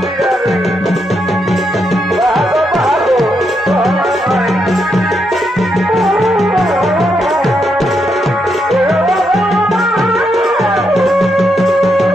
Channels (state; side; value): normal; both; correlation 0.81